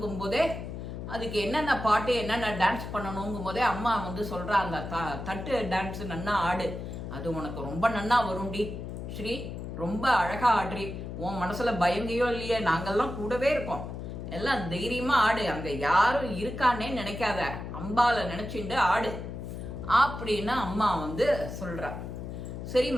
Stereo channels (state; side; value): noise; left; hum, 7 dB below the sound